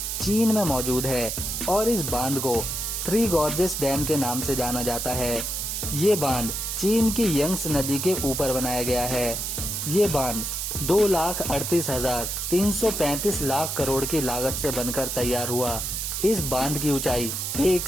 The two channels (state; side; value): noise; right; hiss, 3 dB below the sound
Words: चीन में मौजूद है और इस बांध को थ्री गॉर्जेस डैम के नाम से जाना जाता है। ये बांध चीन की यंग्स नदी के ऊपर बनाया गया है। ये बांध 2,38,335 लाख करोड़ की लागत से बनकर तैयार हुआ। इस बांध की ऊंचाई